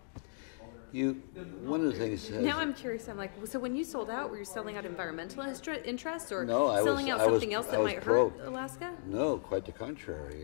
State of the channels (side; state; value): right; silent; digital silence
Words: One of the things. Now I'm curious. I'm like, so when you sold out, were you selling out environmental interests, or no, selling out something else that might hurt Alaska? No, quite the